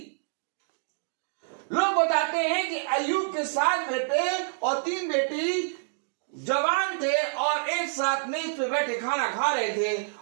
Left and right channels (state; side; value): silent; left; digital silence